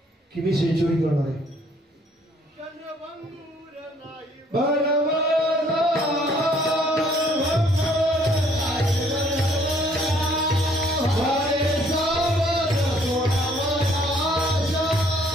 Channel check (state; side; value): normal; both; correlation 0.62